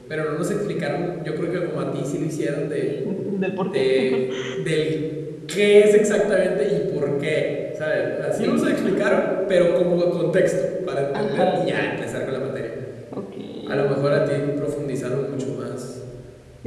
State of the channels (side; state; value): both; identical; correlation 1.00